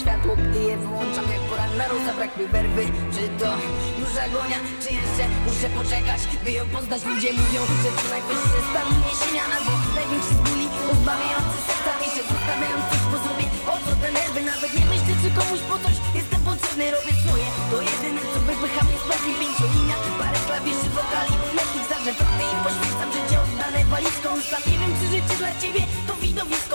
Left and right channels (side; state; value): both; inverted; correlation -1.00